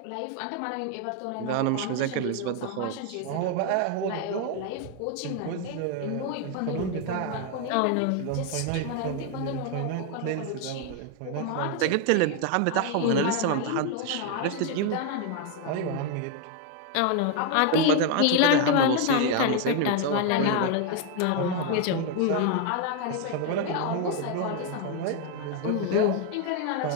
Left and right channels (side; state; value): both; different; correlation 0.01